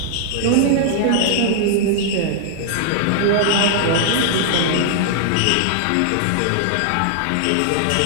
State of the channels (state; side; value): different; both; correlation -0.01